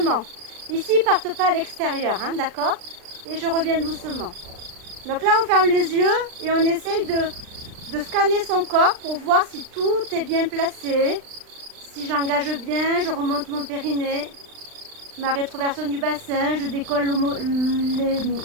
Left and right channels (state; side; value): late; left; 39 ms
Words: Ici, ils ne partent pas à l'extérieur, hein, d'accord? Et je reviens doucement. Donc là, on ferme les yeux et on essaye de scanner son corps pour voir si tout est bien placé. Si j'engage bien, je remonte mon périnée, ma rétroversion du bassin, je décolle